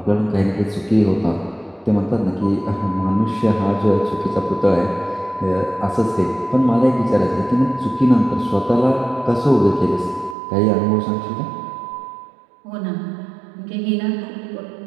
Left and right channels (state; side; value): drops out; left; at 10.4 s